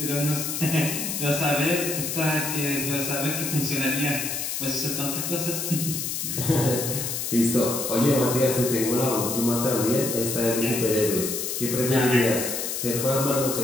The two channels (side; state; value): left; noise; hiss, 3 dB below the sound